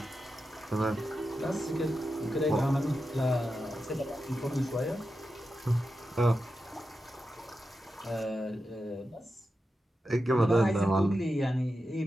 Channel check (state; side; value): normal; both; correlation 0.90